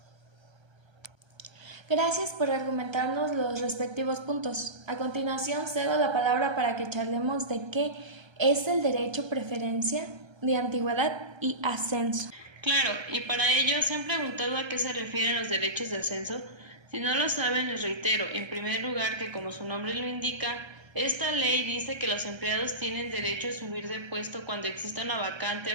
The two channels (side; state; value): left; late; 1.3 ms